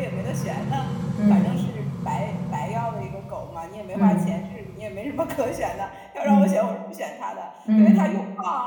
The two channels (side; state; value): both; identical; correlation 1.00